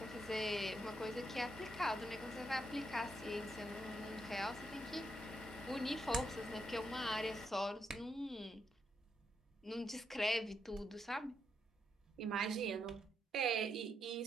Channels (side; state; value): both; normal; correlation 0.80